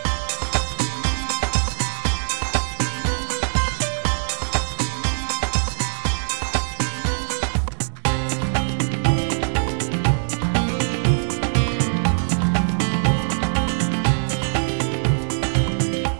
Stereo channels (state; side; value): silent; left; digital silence